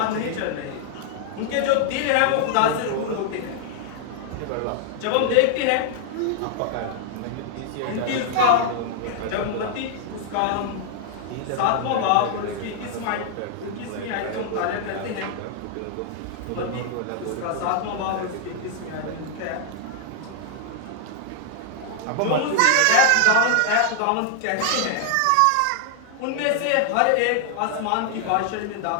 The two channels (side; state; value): both; different; correlation 0.00